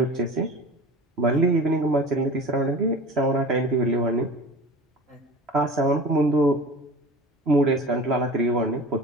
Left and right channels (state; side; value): normal; both; correlation 0.37